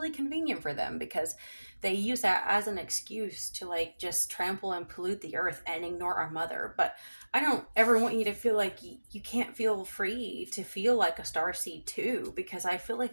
convenient for them because they use that as an excuse to like just trample and pollute the earth and ignore our mother. But I don't ever want you to feel like you can't feel free to feel like a starseed too, because I feel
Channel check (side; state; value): both; inverted; correlation -1.00